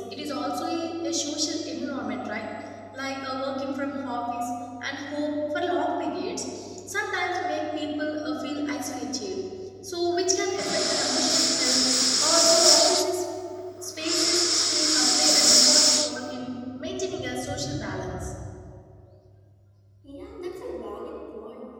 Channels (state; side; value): identical; both; correlation 1.00